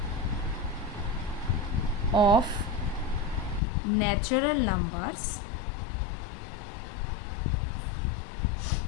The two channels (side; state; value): right; drops out; at 3.6 s